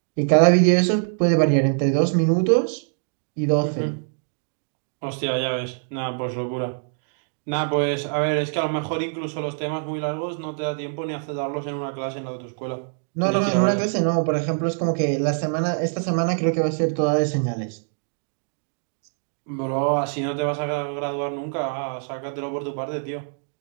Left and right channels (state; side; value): silent; left; digital silence